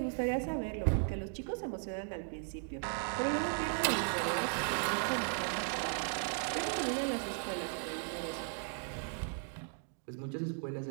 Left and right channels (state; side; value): silent; left; 53 dB below the other